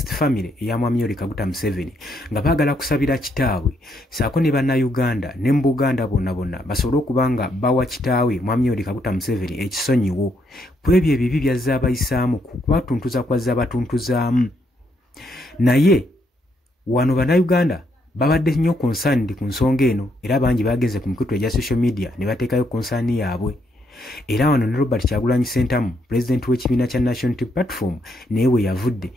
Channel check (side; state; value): both; normal; correlation 0.75